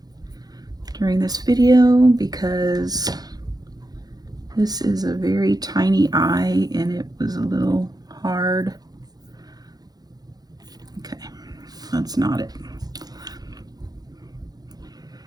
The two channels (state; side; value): late; left; 0.19 ms